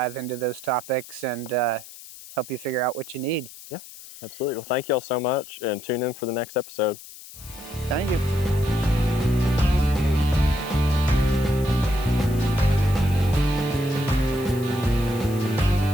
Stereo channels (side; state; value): left; noise; hiss, 16 dB below the sound